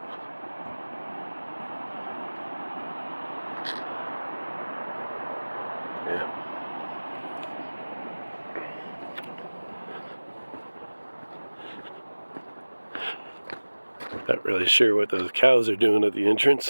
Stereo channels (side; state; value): both; inverted; correlation -1.00